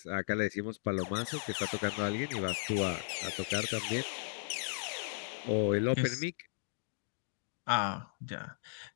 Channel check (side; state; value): right; silent; digital silence